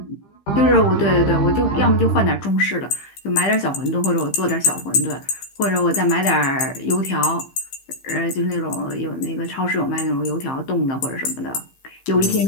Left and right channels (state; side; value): late; right; 15 ms